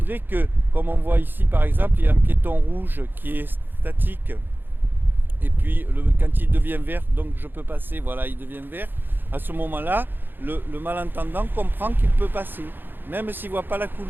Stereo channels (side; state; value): left; late; 0.095 ms